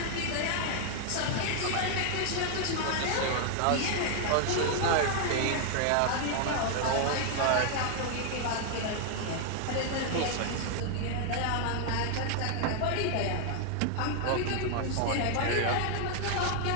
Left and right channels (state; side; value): different; both; correlation 0.00